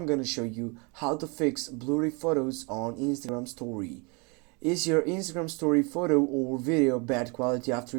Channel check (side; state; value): left; quieter; 31.0 dB